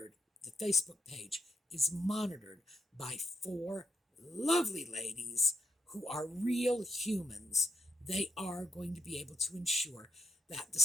the Facebook page is monitored by 4 lovely ladies who are real humans, they are going to be able to ensure that the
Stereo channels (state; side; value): normal; both; correlation 0.77